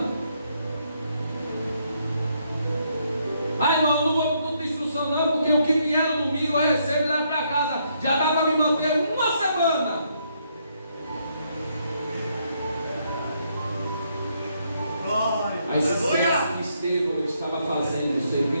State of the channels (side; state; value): both; inverted; correlation -0.74